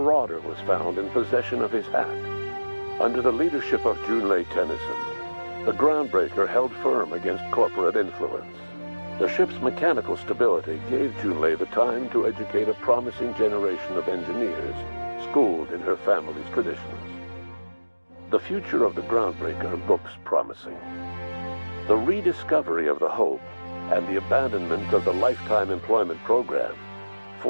was found in possession of his hat. Under the leadership of Junlei Tennyson, the Groundbreaker held firm against corporate influence. The ship's mechanical stability gave Junlei the time to educate a promising generation of engineers schooled in her family's traditions. The future of the Groundbreaker looks promising. The rediscovery of the Hope and the abandonment of the lifetime employment program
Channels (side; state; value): both; inverted; correlation -1.00